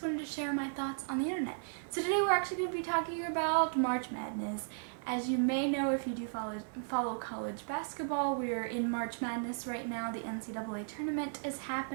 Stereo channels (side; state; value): left; silent; 54 dB below the other